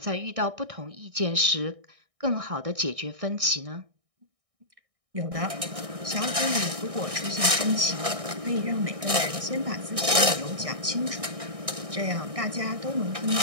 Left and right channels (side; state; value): left; late; 1.6 ms